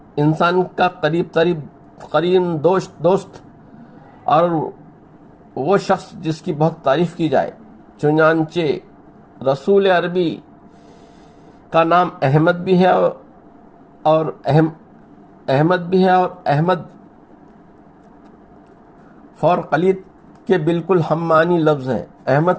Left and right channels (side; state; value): both; identical; correlation 1.00